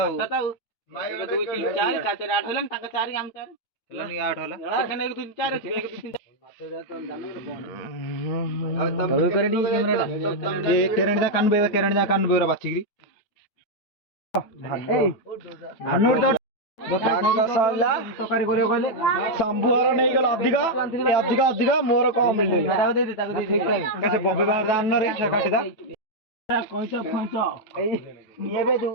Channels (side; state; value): right; late; 9.1 ms